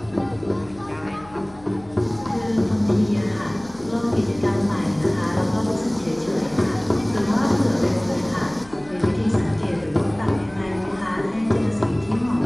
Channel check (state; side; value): noise; left; hum, 23 dB below the sound